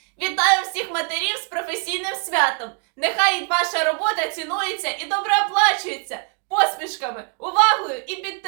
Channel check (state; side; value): quieter; left; 37.6 dB